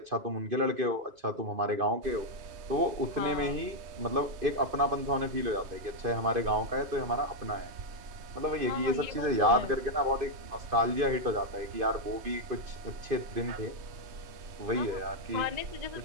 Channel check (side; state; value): left; late; 2.5 ms